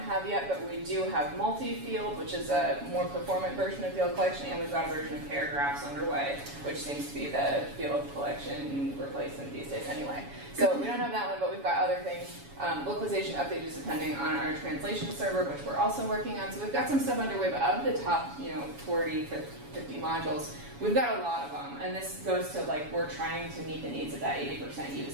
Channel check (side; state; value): left; late; 7.1 ms